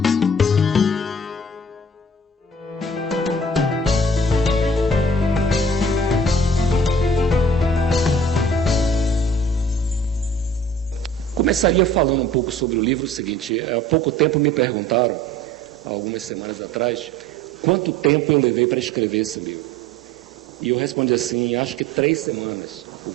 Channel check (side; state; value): both; normal; correlation 0.48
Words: Começaria falando um pouco sobre o livro. O seguinte: há pouco tempo me perguntaram, há algumas semanas atrás, quanto tempo eu levei para escrever esse livro. E eu respondi assim, acho que 3 semanas, ou